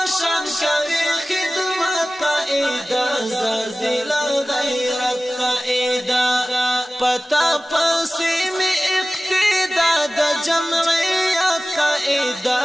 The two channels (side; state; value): both; normal; correlation 0.97